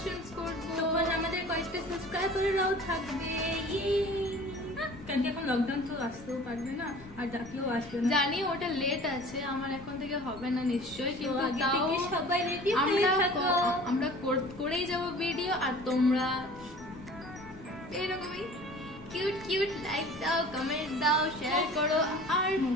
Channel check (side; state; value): both; normal; correlation 0.45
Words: করবো, তখন আমাদের কয়েকটা সাবস্ক্রাইবাররাও থাকবে। কারণ এখন লকডাউন তো আসতেও পারবে না, আর ডাকলেও আসবে না। জানি ওটা লেট আছে, আমার এখন থেকে হবে না নিশ্চয়ই, কিন্তু আগে তাও থেকে সবাই রেডি হয়ে থাকো, আমরা করেই যাব ভিডিও। আর তোমরা এইরকমই কিউট কিউট, লাইক দাও, কমেন্ট দাও, শেয়ার করো। আর